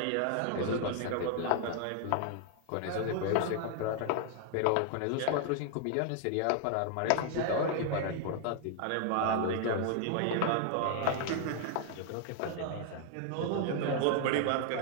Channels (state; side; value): different; both; correlation 0.00